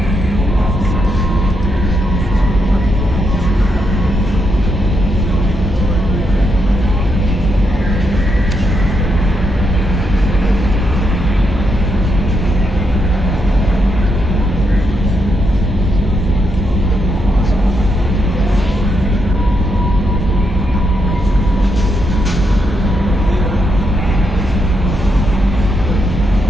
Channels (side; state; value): both; normal; correlation 0.80